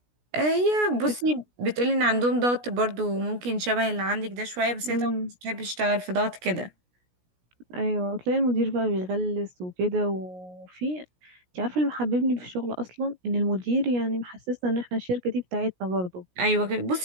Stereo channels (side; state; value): left; late; 17 ms